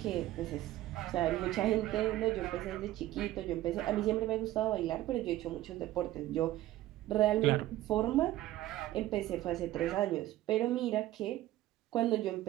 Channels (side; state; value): left; quieter; 15.2 dB